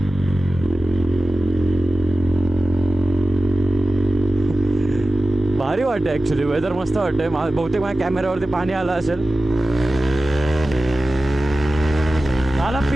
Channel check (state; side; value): normal; both; correlation 0.95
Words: भारी वाटतं ॲक्च्युली, वेदर मस्त वाटतंय. बहुतेक माझ्या कॅमेऱ्यावरती पाणी आलं असेल. मला